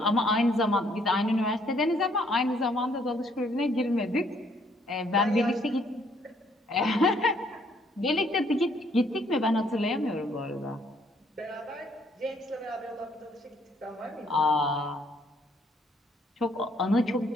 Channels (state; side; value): normal; both; correlation 0.66